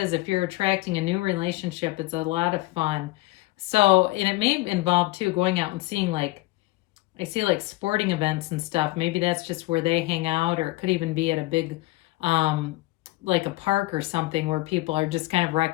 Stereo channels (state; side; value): quieter; right; 20.6 dB